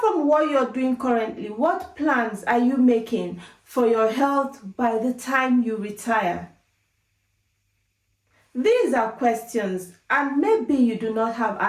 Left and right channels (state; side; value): identical; both; correlation 1.00